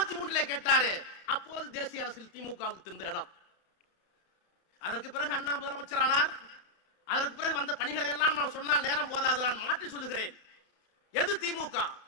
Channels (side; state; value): right; late; 32 ms